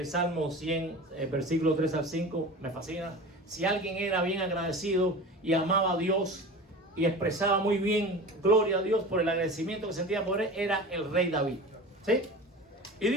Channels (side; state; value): both; normal; correlation 0.34